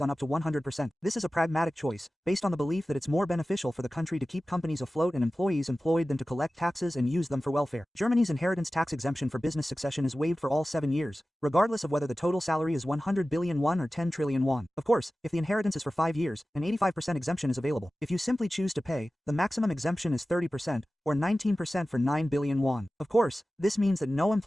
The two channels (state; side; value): normal; both; correlation 0.96